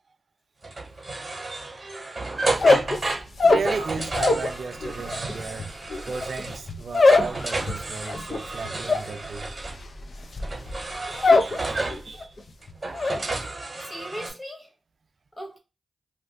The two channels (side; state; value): both; normal; correlation 0.90